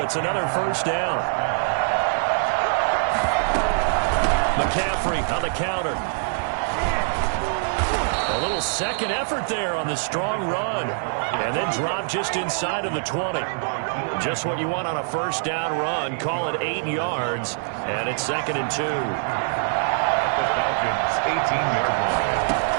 It's another 1st down. McCaffrey on the counter. A little second effort there on the strong run. And then drop just inside of the 20. Just what you want on a 1st down run. Call it 8 yards. And it's 2nd and 2. The Falcons, 18-yard line.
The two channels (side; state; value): left; silent; digital silence